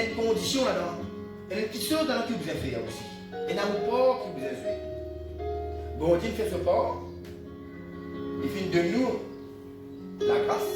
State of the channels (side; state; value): both; identical; correlation 1.00